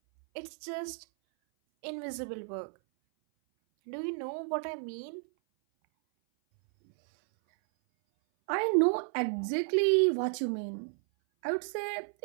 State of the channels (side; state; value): left; silent; 56 dB below the other